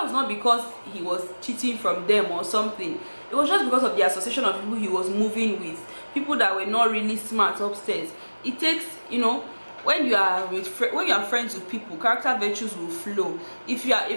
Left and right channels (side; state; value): both; inverted; correlation -1.00